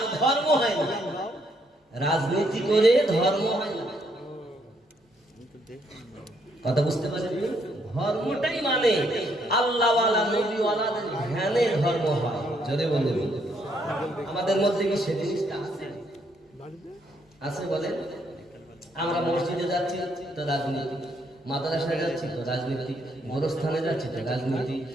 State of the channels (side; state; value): both; normal; correlation 0.72